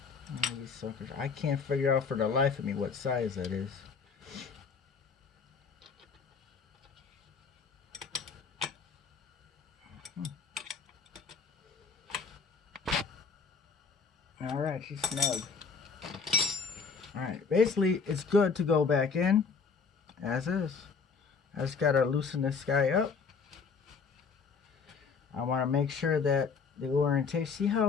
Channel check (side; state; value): right; quieter; 5.4 dB